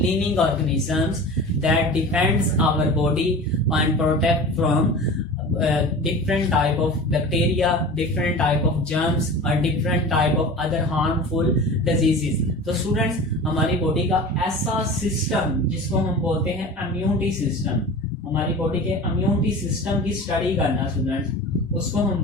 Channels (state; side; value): normal; both; correlation 0.35